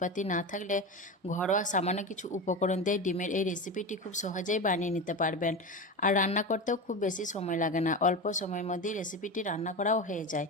না থাকলে ঘরোয়া সামান্য কিছু উপকরণ দিয়ে ডিমের এই রেসিপিটি খুব সহজেই বানিয়ে নিতে পারবেন। আর রান্না করতেও খুব বেশি সময় লাগে না, অল্প সময়ের মধ্যেই রেসিপিটি রান্না করাও হয়ে যায়।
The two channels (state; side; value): normal; both; correlation 0.23